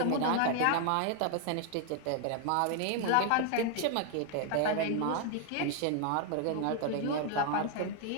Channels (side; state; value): both; different; correlation 0.00